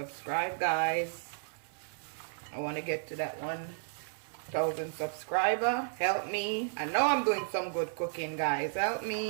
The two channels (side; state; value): left; silent; digital silence